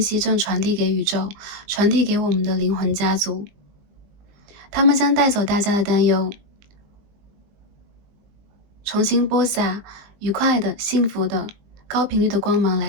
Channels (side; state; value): left; late; 20 ms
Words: 正传递给宇宙，传递给我们的灵魂家族，他们将带走大家的担忧，重新播撒愉快的、幸福的、高频率的光芒